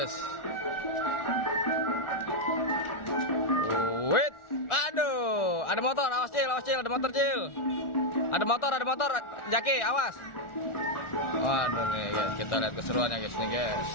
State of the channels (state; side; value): late; right; 1.4 ms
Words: Wait, aduh. Ada motor, awas, Cil, ada motor, Cil. Ada motor, Jaki, awas. Waduh nih, guys, kita lihat keseruannya, guys, nih, guys.